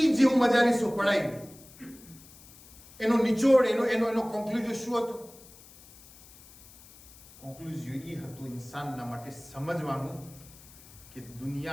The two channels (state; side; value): noise; left; hiss, 22 dB below the sound